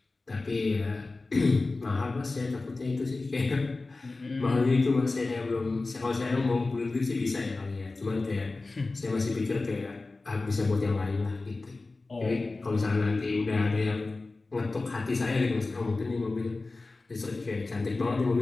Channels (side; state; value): right; quieter; 3.4 dB